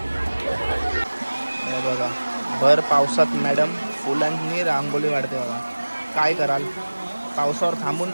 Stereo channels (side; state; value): both; inverted; correlation -1.00